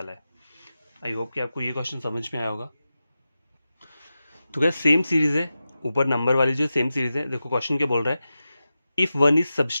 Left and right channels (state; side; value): inverted; both; correlation -0.93